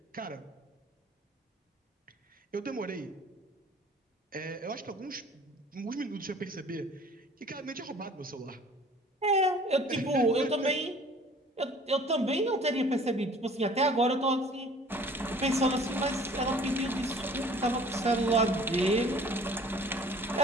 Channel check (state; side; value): normal; both; correlation 0.50